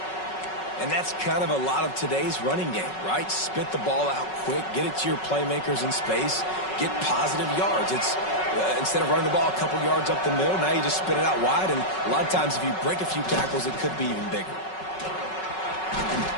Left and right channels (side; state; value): right; late; 5.4 ms